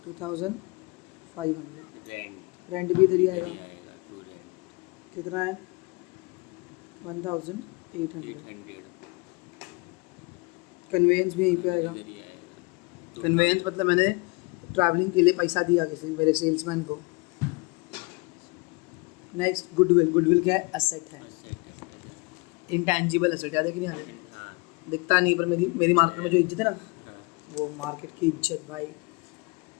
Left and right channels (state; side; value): quieter; right; 27.7 dB